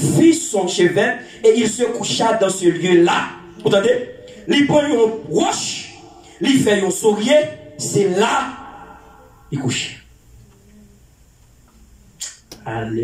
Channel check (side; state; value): both; identical; correlation 1.00